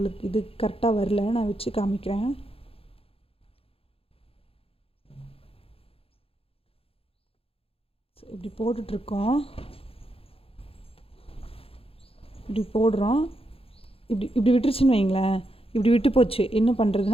இது கரெக்டாக வரல, நான் வச்சு காமிக்கிறேன். ஸோ இப்படி போட்டுட்ருக்கோம், இப்படி போடுறோம். இப்படி விட்டுருச்சுன்னு வைங்களேன், இப்படி விட்டு போச்சு. என்ன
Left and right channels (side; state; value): right; late; 0.27 ms